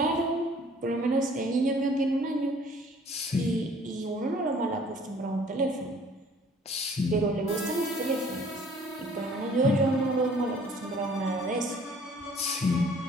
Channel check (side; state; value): both; normal; correlation 0.55